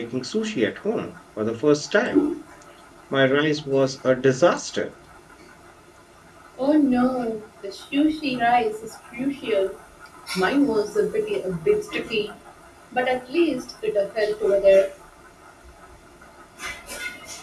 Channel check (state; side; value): identical; both; correlation 1.00